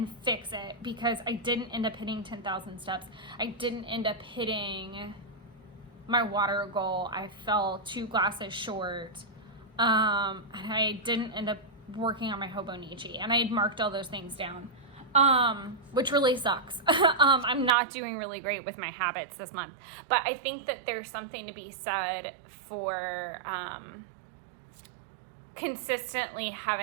fix it, because I didn't end up hitting 10,000 steps. I didn't end up hitting my water goal. I fell 2 glasses short. And I didn't end up working on my Hobonichi, and I had marked all those things down, which really sucks. I'm not doing really great with my habits this month, but I think that there's something to be said for consistently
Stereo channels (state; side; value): drops out; left; at 17.7 s